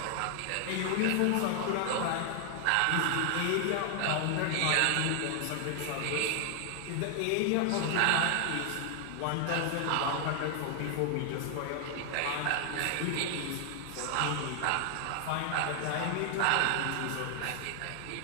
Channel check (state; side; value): different; both; correlation 0.00